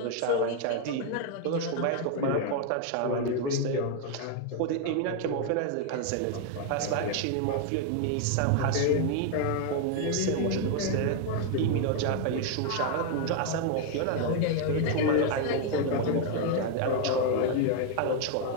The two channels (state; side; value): different; both; correlation 0.00